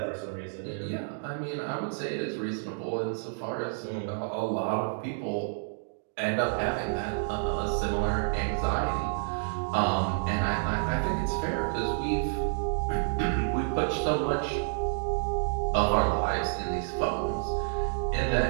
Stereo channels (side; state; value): left; silent; digital silence